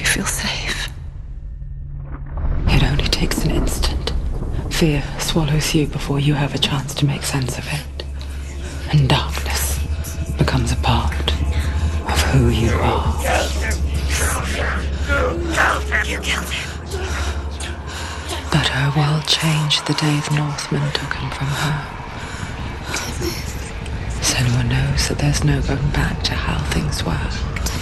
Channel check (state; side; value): identical; both; correlation 1.00